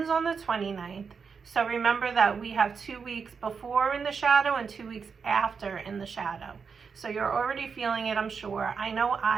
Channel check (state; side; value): quieter; left; 5.8 dB